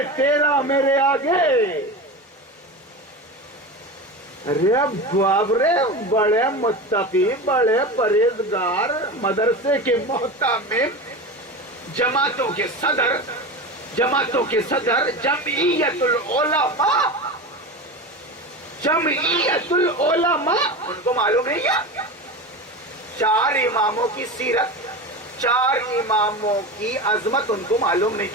تیرا میرے آگے. ارے باپ رے، بڑے متقی، بڑے پرہیزگار، مدرسے کے محتمم، جماعتوں کے صدر، جمعیت العلماء، ان کو معلوم نہیں کیا؟ 4 اماموں کی سیرت، 4 اماموں کی عظمت ان کو معلوم نہیں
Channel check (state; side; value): normal; both; correlation 0.26